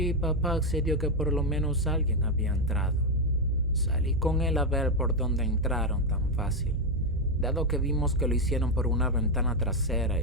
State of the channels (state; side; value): normal; both; correlation 0.05